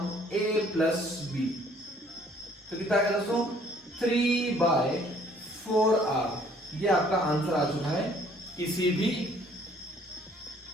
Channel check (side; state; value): both; normal; correlation 0.60